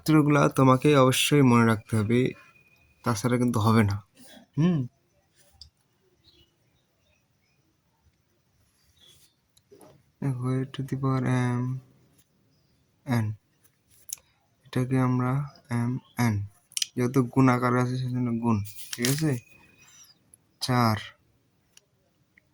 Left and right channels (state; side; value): identical; both; correlation 1.00